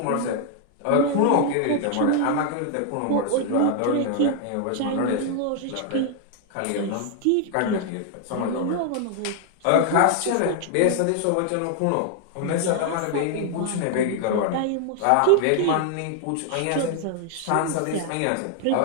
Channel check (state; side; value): different; both; correlation 0.00